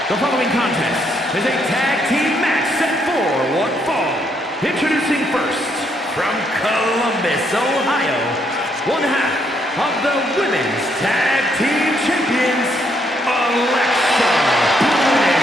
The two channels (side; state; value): both; normal; correlation 0.73